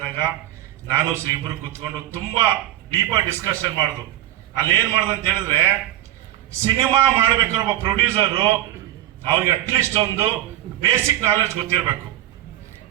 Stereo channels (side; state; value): left; quieter; 13.5 dB